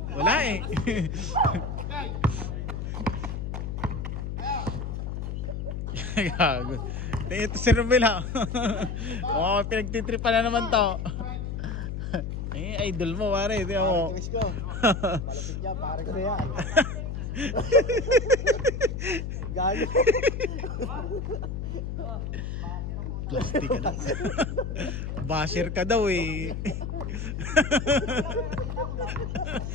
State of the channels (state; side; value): noise; left; hum, 4 dB below the sound